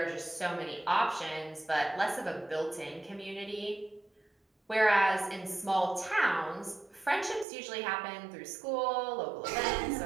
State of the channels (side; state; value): left; drops out; at 7.5 s